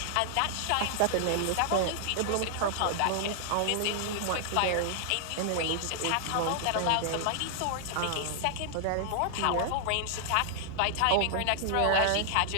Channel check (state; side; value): different; both; correlation 0.00